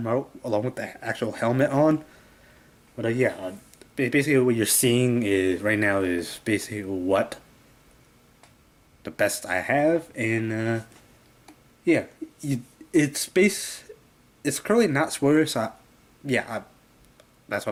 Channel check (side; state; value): both; identical; correlation 1.00